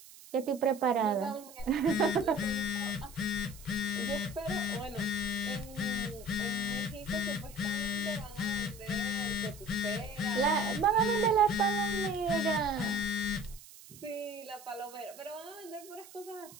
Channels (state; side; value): noise; right; hiss, 19 dB below the sound